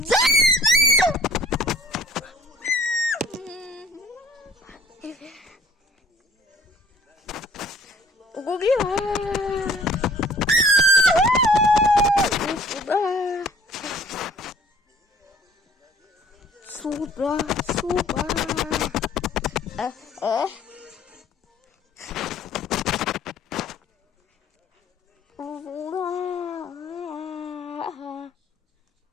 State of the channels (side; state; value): both; normal; correlation 0.54